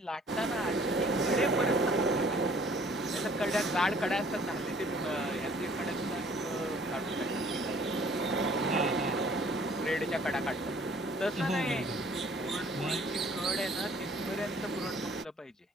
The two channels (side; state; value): both; normal; correlation 0.56